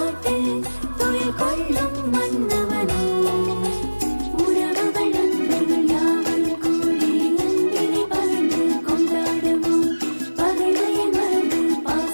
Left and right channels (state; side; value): inverted; both; correlation -1.00